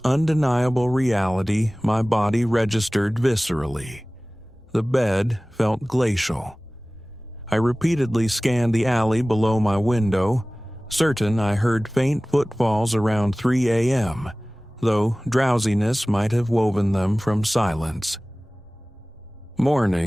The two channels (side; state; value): both; normal; correlation 0.98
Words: undeniable reality my body registered viscerally. The bed felt glacial. I repeatedly scanned the alley below my window, certain I heard faint footfalls around 3 a.m., though drowsiness might have woven them from silence.